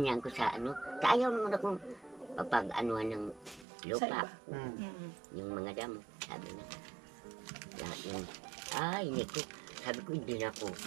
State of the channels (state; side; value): drops out; left; at 3.7 s